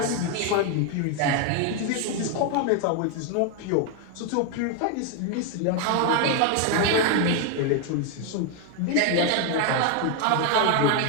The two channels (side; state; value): both; different; correlation 0.01